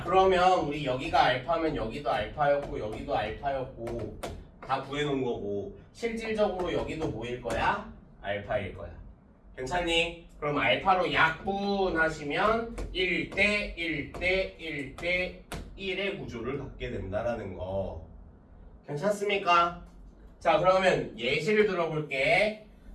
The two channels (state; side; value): identical; both; correlation 1.00